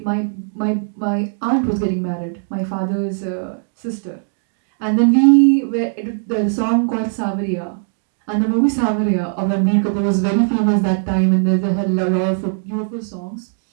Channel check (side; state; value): left; silent; digital silence